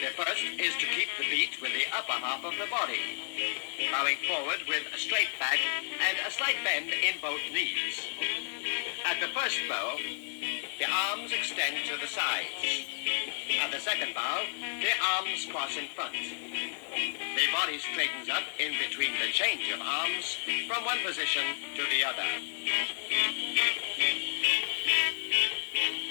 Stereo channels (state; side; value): silent; right; digital silence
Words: first is to keep the beat with the upper half of the body, bowing forward with a straight back and a slight bend in both knees. At the first bow, the arms extend to the sides. At the second bow, the arms cross in front. The body straightens up in between the change of arms from one position to the other.